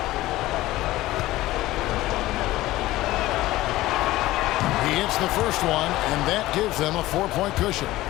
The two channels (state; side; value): quieter; right; 16.9 dB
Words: gets the first one, and that gives them a 4-point cushion.